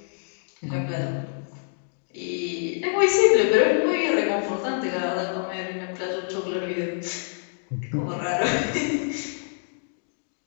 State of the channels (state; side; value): silent; right; digital silence